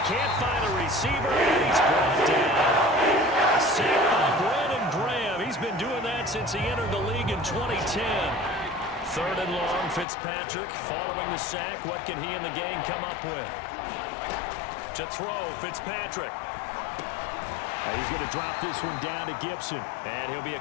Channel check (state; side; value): drops out; right; at 10.1 s